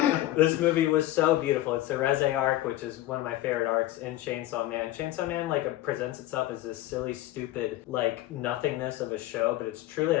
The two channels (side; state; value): right; quieter; 15.4 dB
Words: This movie was so beautiful. It's the Reze arc, which is one of my favorite arcs in Chainsaw Man. Chainsaw Man presents itself as this silly, stupid, nothingness of a show, but it's truly